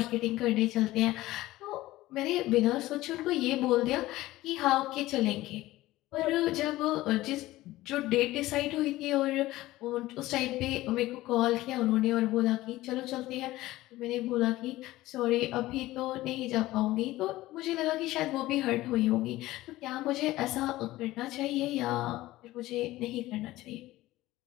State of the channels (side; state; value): right; quieter; 17.0 dB